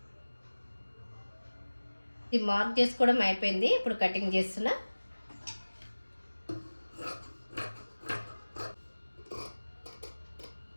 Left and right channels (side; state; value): both; inverted; correlation -1.00